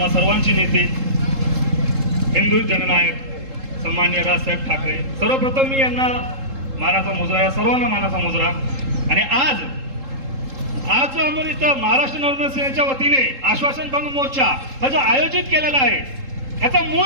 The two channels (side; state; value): left; late; 3.7 ms